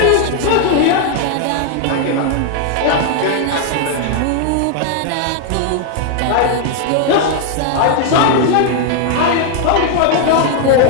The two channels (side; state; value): both; different; correlation 0.00